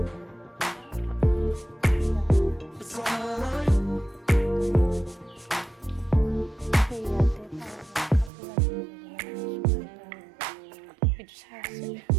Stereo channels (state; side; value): drops out; left; at 8.3 s